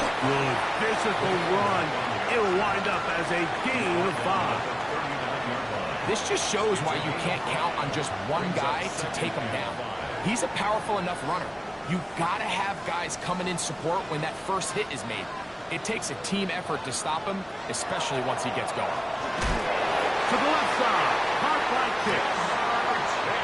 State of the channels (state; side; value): identical; both; correlation 1.00